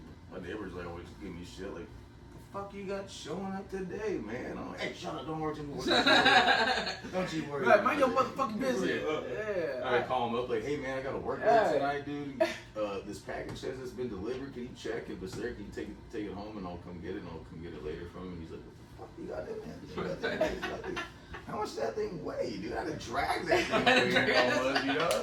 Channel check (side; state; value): both; identical; correlation 1.00